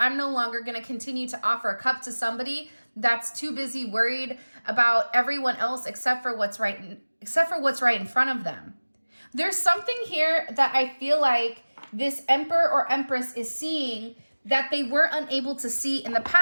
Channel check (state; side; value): inverted; both; correlation -1.00